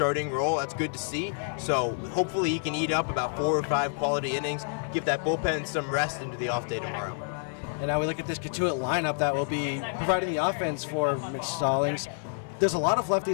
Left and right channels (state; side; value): silent; right; digital silence